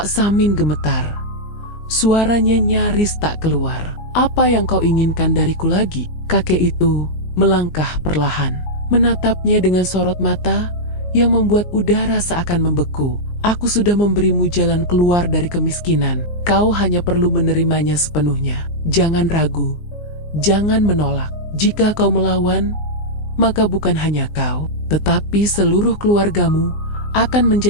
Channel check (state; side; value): late; right; 19 ms